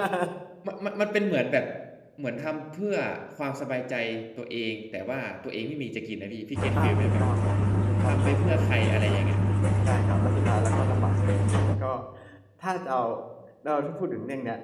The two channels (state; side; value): identical; both; correlation 1.00